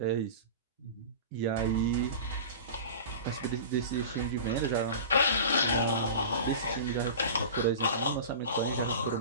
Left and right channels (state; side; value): inverted; both; correlation -0.34